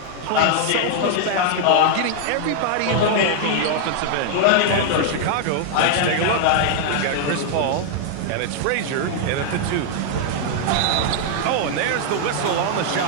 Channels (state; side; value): different; both; correlation 0.00